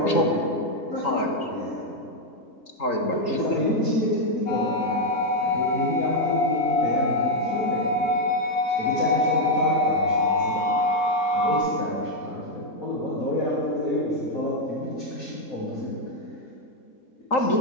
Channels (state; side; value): late; right; 3.8 ms